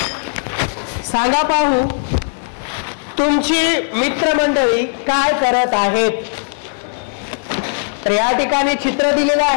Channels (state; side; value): silent; right; 56 dB below the other